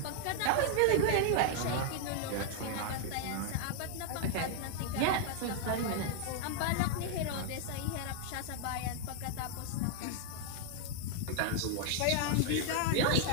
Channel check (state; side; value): different; both; correlation 0.00